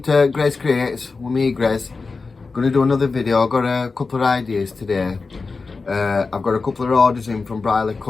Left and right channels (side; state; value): right; quieter; 4.2 dB